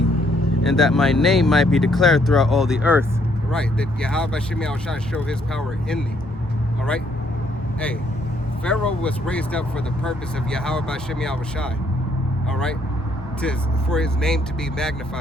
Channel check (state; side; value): normal; both; correlation 0.69